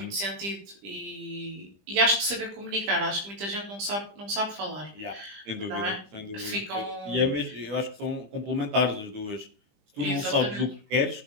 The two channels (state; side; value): late; left; 20 ms